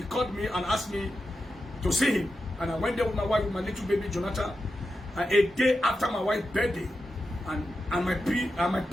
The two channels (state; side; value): normal; both; correlation 0.89